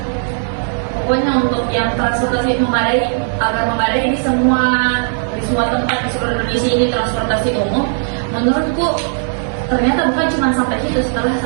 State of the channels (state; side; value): silent; left; 61 dB below the other